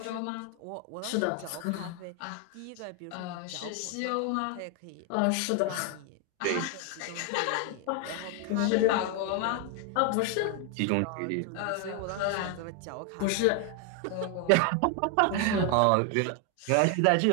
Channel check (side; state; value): both; different; correlation 0.01